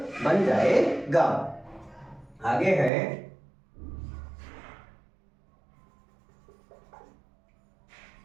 बन जाएगा। आगे है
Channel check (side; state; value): left; drops out; at 2.9 s